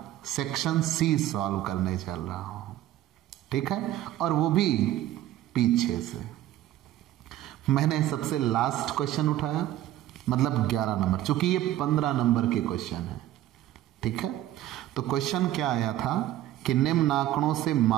सेक्शन सी सॉल्व करने चल रहा हूं, ठीक है, और वो भी पीछे से। मैंने सबसे लास्ट क्वेश्चन उठाया, मतलब 11 नंबर, चूंकि ये 15 नंबर के क्वेश्चन है, ठीक है। तो क्वेश्चन क्या आया था कि निम्न आंकड़ों से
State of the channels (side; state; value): left; quieter; 13.6 dB